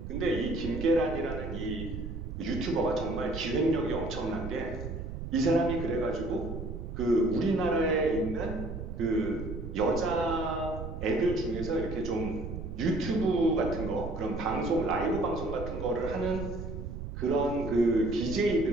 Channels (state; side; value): noise; right; rumble, 7 dB below the sound